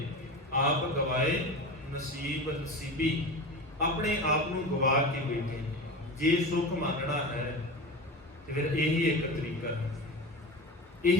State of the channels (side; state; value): both; normal; correlation 0.28